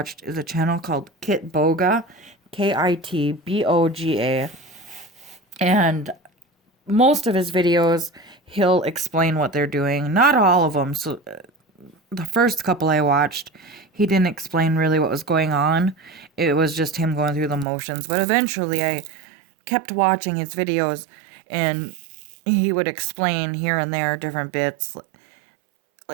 is a channel called Kitboga, Kitboga. And most of his videos, he'll explain what they're doing. Not all of them. So the first couple I watched, he didn't explain really what was going on. It was just him going through the motions. But eventually I kept watching his videos, and he would explain here and there different bits.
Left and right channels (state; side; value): drops out; left; at 17.7 s